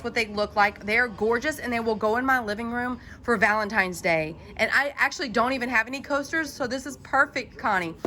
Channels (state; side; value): identical; both; correlation 1.00